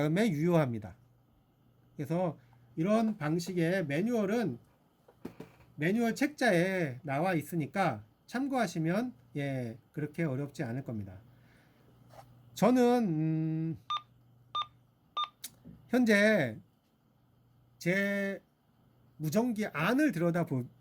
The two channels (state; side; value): identical; both; correlation 1.00